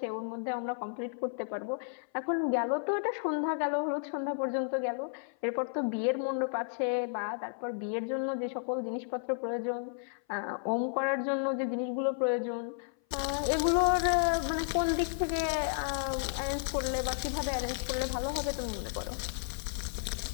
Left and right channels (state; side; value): silent; right; 56 dB below the other